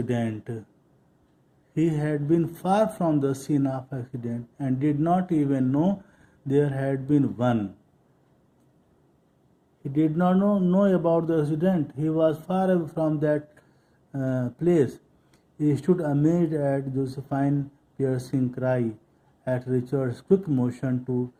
He had been far from the scene of accident and did not even know there had been one. He did not know about the accident. He was far away from that place. He stood amazed at Josephine's piercing cry, at Richard's quick motion to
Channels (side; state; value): both; identical; correlation 1.00